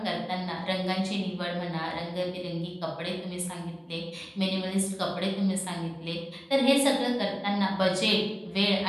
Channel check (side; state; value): both; identical; correlation 1.00